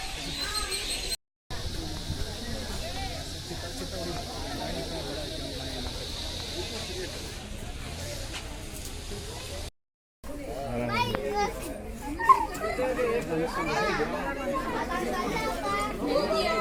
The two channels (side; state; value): both; identical; correlation 1.00